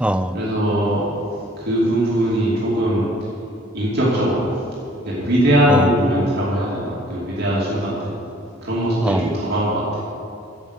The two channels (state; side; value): normal; both; correlation 0.57